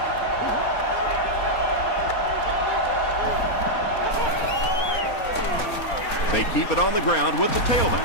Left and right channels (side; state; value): right; late; 4.4 ms